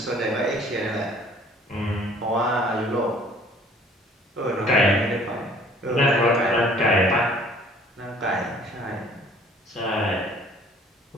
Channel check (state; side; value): normal; both; correlation 0.54